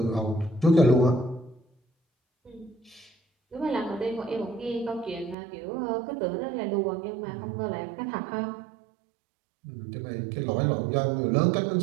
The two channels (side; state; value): left; drops out; at 5.4 s